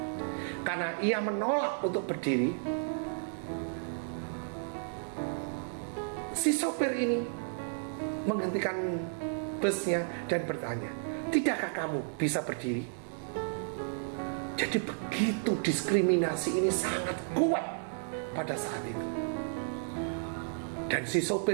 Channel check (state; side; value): silent; left; digital silence